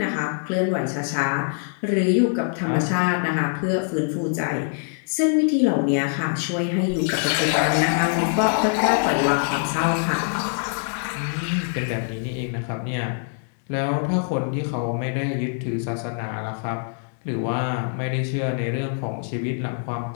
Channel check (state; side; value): silent; right; 63 dB below the other